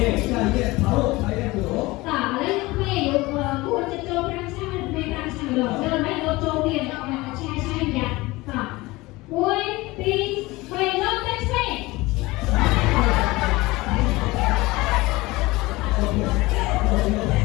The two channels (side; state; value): right; quieter; 21.0 dB